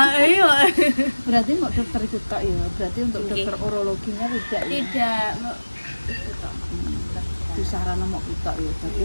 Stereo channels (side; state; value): both; inverted; correlation -1.00